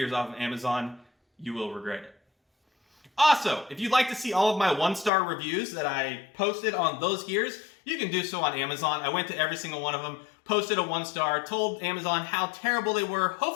off of Amazon. You will regret it. Also, if you'd like to see all of my 1-star reviews that I posted on those gears, you can do so on Amazon. I went to every single one of them, posted a 1-star, told Amazon how terrible they were.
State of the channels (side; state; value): right; drops out; at 5.1 s